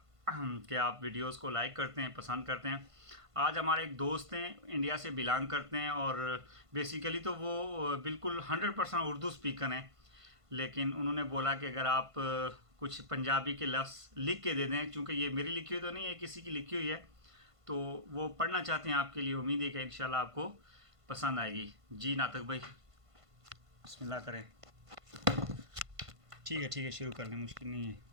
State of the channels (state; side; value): late; left; 1.5 ms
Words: कि आप वीडियोस को लाइक करते हैं, पसंद करते हैं। आज हमारे एक दोस्त हैं, इंडिया से बिलोंग करते हैं और बेसिकली तो वो बिल्कुल 100% उर्दू स्पीकर हैं। लेकिन उन्होंने बोला कि अगर आप कुछ पंजाबी के लफ्ज़ लिख के दे दें, क्योंकि ये मेरी लिखी हुई तो नहीं है, किसी की लिखी हुई है, तो वो पढ़ना चाहते हैं आपके लिए। उम्मीद है कि इंशाल्लाह आपको पसंद आएगी। जी नातक भाई, बिस्मिल्लाह करें। ठीक है, शुरू कर लें, मुश्किल नहीं है।